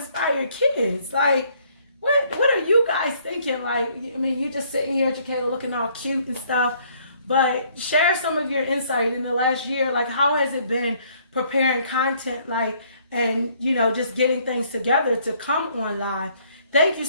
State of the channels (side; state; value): both; inverted; correlation -0.64